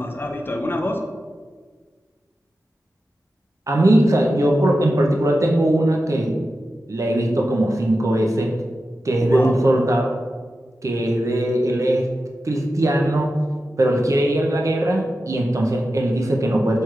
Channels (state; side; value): normal; both; correlation 0.91